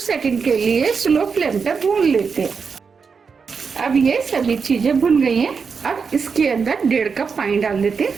सेकंड के लिए स्लो फ्लेम पर भून लेते हैं। अब ये सभी चीजें भुन गई हैं। अब इसके अंदर 1.5 कप पानी डाल देते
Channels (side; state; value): left; quieter; 5.6 dB